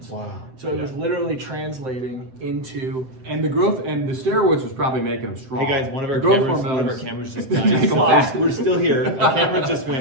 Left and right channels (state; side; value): late; left; 7.8 ms